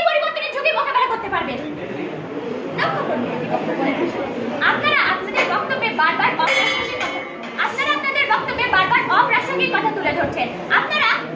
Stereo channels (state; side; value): identical; both; correlation 1.00